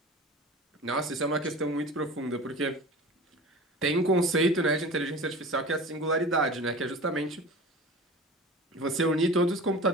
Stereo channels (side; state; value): both; normal; correlation 0.36